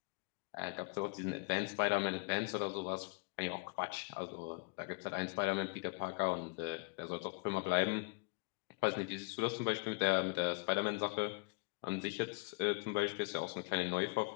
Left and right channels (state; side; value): quieter; right; 28.6 dB